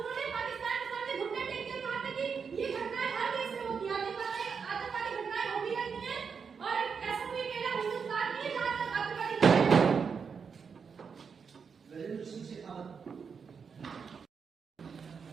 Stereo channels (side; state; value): left; quieter; 6.0 dB